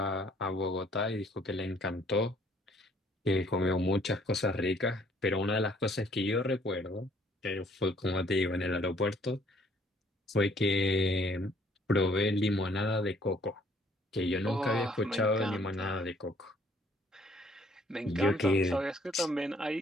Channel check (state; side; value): normal; both; correlation 0.62